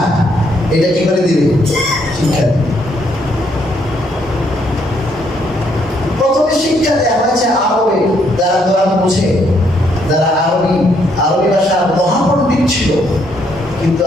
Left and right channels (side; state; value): both; normal; correlation 0.71